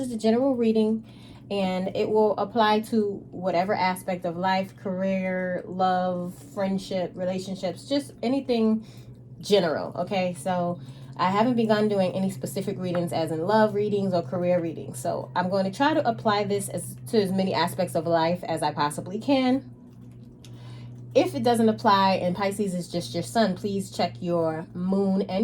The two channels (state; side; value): identical; both; correlation 1.00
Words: the general reading and it will apply to whatever aspect of life, career, love, friendship, relationships, just anything general. Okay, so I haven't begun doing any specific readings as in love readings or career readings. So I'm going to try to apply this to as many aspects of life as I possibly can. If it doesn't apply and Pisces is just your sun, please check your moon